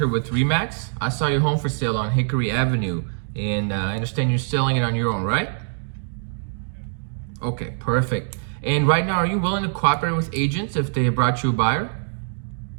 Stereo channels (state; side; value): silent; left; digital silence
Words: with Remax. I saw your home for sale on Hickory Avenue, and I understand you're selling it on your own, right? Okay, perfect. And right now, are you willing to cooperate with agents if they brought you a buyer?